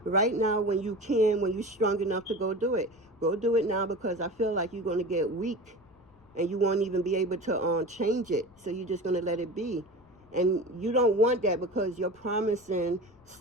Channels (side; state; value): left; noise; rumble, 29 dB below the sound